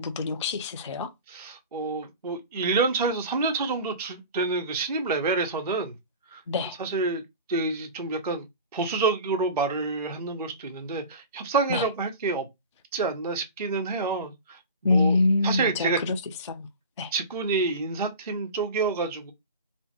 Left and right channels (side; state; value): both; inverted; correlation -0.33